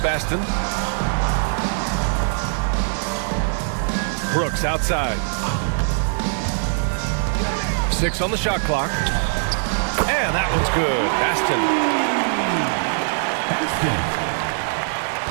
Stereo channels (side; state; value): left; silent; digital silence